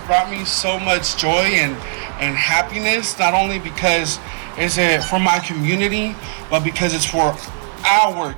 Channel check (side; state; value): left; silent; 64 dB below the other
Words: brought me so much joy and happiness, not only because it's for my community, but because it's for our